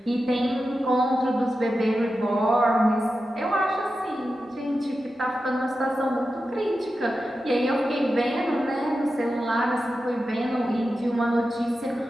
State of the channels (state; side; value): normal; both; correlation 0.91